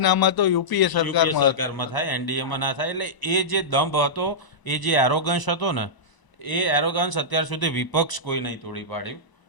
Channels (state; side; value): late; right; 1.0 ms